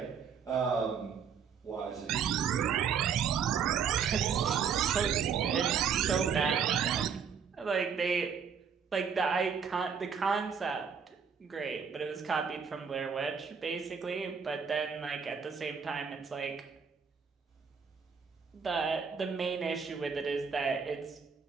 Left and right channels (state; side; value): quieter; left; 6.6 dB